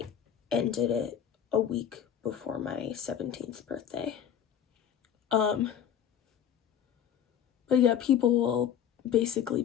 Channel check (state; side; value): quieter; right; 9.1 dB